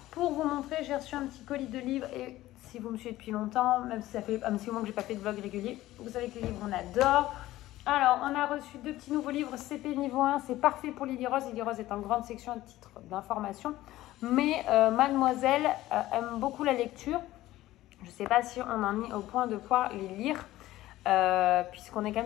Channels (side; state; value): right; quieter; 15.9 dB